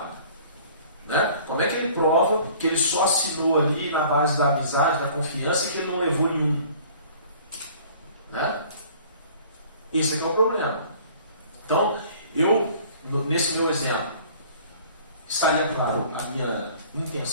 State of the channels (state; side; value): inverted; both; correlation -0.51